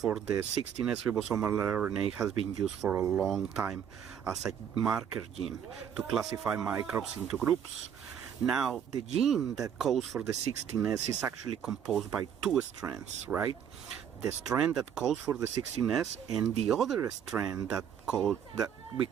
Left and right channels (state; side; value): quieter; left; 8.5 dB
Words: the 16S ribosomal RNA has been used for a long time as a marker gene to classify microbes into groups. Now, the gene that codes for the 16S is actually composed by two strands, right? The strand that codes for the 16S and the other strand that we